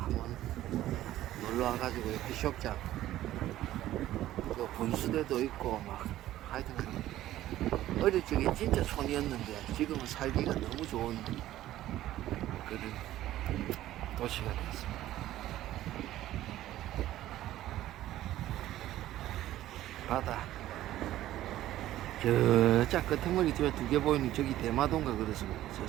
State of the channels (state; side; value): quieter; left; 14.1 dB